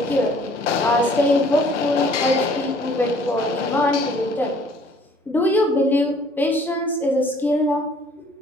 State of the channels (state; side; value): normal; both; correlation 0.57